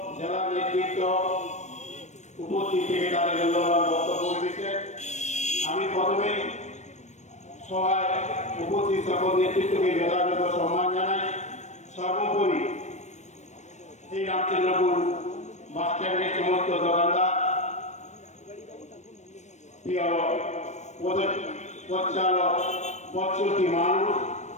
জেলা নেতৃত্ব উপস্থিত থেকে তাদের মূল্যবান বক্তব্য রেখেছেন। আমি প্রথমেই সভায় উপস্থিত সকল নেতৃত্বকে যথাযথ সম্মান জানাই। সর্বোপরি এই রামচন্দ্রপুর বাস স্ট্যান্ডের সমস্ত দোকানদার, পথচালক, পথচলতি মানুষ,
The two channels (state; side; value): late; right; 0.34 ms